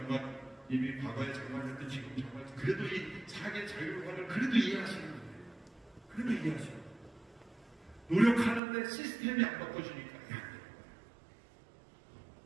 과거에 장관이었던 지금 장관, 그래도 이 사계 자율화를 그래도 이해하시는 거예요. 그래도 이해하시는 거예요. 노력하는데 시스템이 안 바꿔주니까 안 돼요.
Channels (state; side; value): drops out; left; at 8.6 s